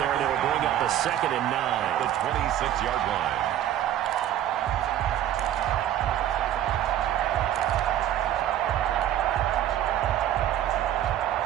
and it'll bring up a 2nd and 9. The 26-yard line.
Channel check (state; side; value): quieter; left; 11.6 dB